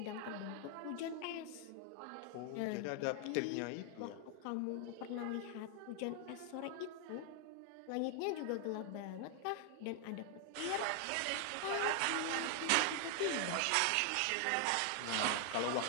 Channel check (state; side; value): different; both; correlation 0.00